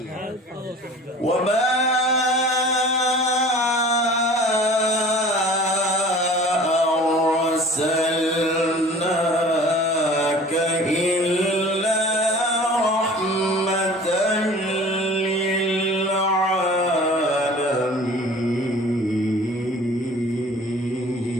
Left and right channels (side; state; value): both; normal; correlation 0.44